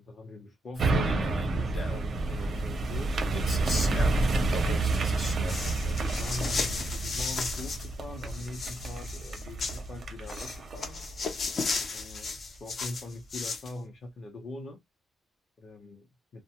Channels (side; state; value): both; normal; correlation 0.80